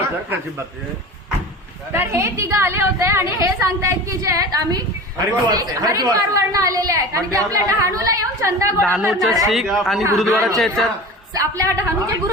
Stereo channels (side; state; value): both; normal; correlation 0.34